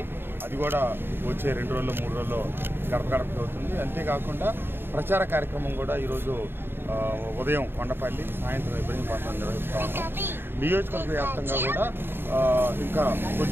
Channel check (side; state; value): left; late; 0.10 ms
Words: అది కూడా వచ్చే 2 రోజుల్లో 3 రోజుల్లో గడప గడపకి అవుతుంది. అంతేకాకుండా ప్రచార కార్యక్రమం కూడా ఈరోజు ఉదయం కొండపల్లి, సాయంత్రం ఇబ్రహీంపట్నం నిర్వహిస్తూ ఉన్నాం. నియోజకవర్గ వ్యాప్తంగా కూడా ఇంకా